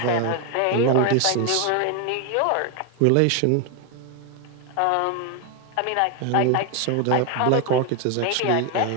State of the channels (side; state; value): both; different; correlation 0.01